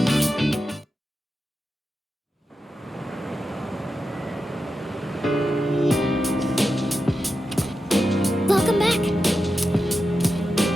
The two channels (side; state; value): both; normal; correlation 0.90